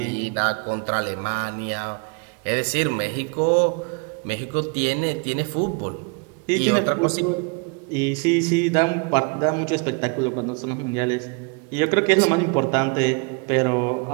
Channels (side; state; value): left; quieter; 33.2 dB